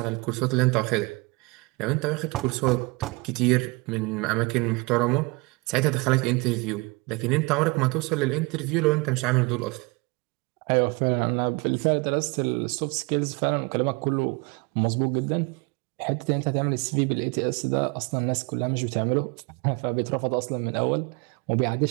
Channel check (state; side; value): quieter; left; 27.0 dB